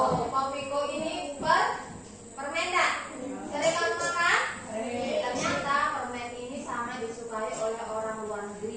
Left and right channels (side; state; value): both; identical; correlation 1.00